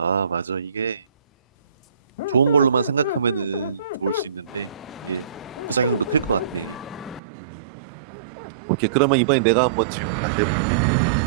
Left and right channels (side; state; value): left; drops out; at 7.2 s